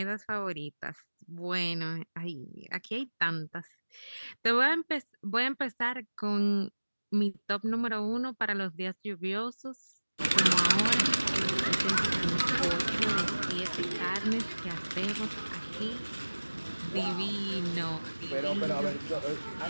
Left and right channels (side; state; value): both; inverted; correlation -1.00